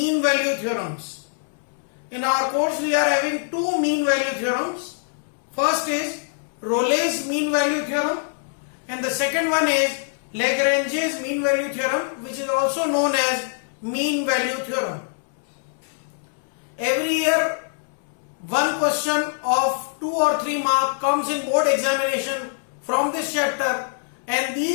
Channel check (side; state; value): right; silent; 63 dB below the other